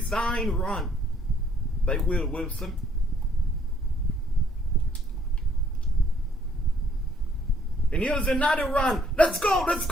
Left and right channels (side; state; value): both; normal; correlation 0.65